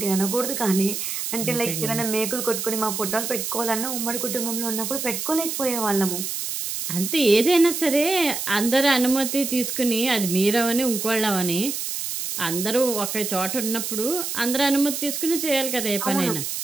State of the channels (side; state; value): right; noise; hiss, 4 dB below the sound